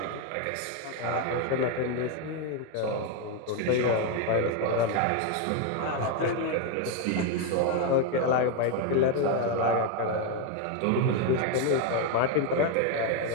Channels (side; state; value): both; different; correlation 0.01